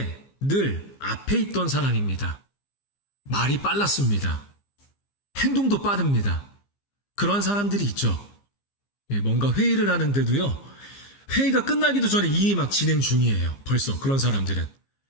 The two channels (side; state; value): right; late; 15 ms